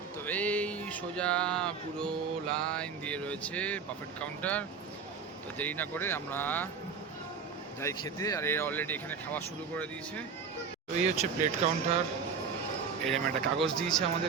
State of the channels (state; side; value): quieter; left; 5.9 dB